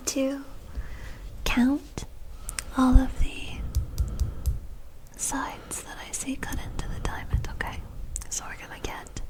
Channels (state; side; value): identical; both; correlation 1.00